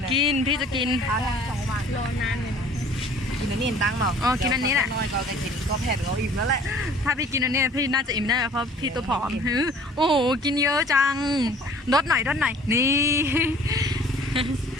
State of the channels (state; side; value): normal; both; correlation 0.51